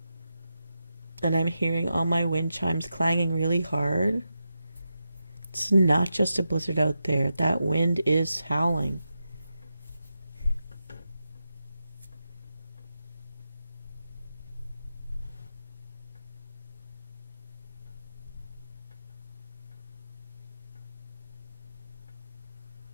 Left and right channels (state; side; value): inverted; both; correlation -0.89